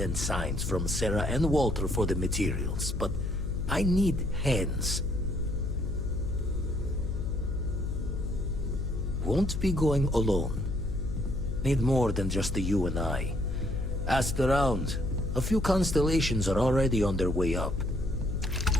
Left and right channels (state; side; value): noise; left; hum, 3 dB below the sound